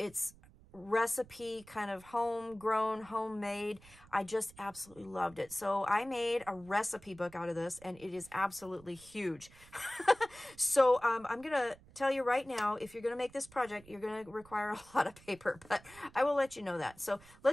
recipe, kind of homegrown, homemade. I just absolutely loved it. So I made a recipe book out of this, and it is absolutely huge. So I'm going to tell you right now, if you're going to make this project, you're going to require a lot of paper, but I will let you know that. So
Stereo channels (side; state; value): right; noise; rumble, 23 dB below the sound